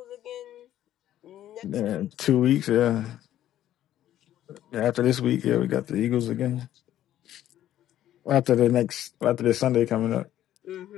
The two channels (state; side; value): quieter; right; 12.3 dB